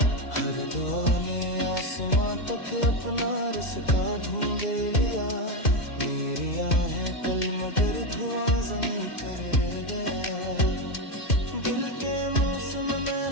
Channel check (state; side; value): late; right; 2.3 ms